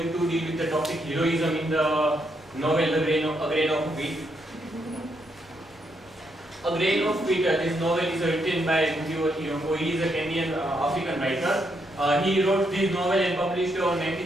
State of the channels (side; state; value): left; noise; rumble, 28 dB below the sound